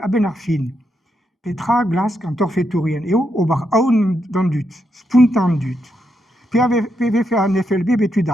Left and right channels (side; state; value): both; normal; correlation 0.82